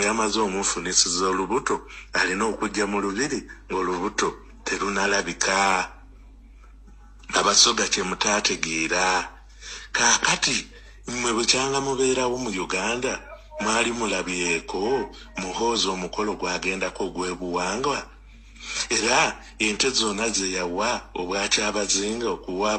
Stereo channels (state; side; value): identical; both; correlation 1.00